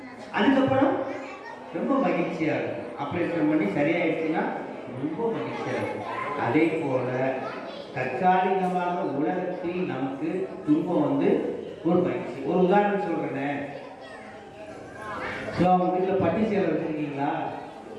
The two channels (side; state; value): both; identical; correlation 1.00